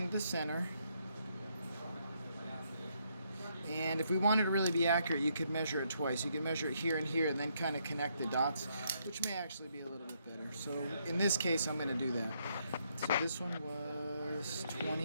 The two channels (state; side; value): inverted; both; correlation -0.74